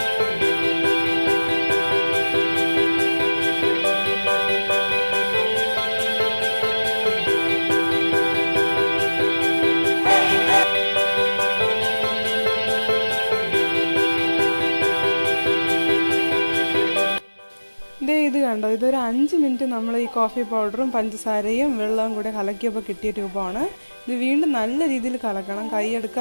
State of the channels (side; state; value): both; inverted; correlation -1.00